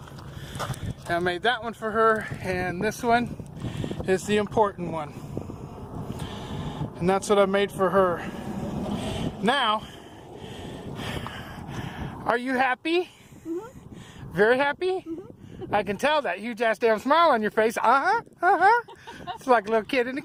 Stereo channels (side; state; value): both; identical; correlation 1.00